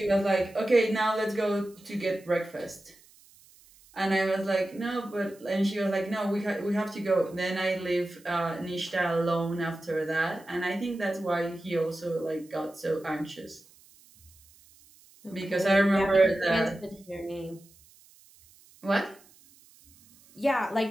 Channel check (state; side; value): noise; right; hiss, 27 dB below the sound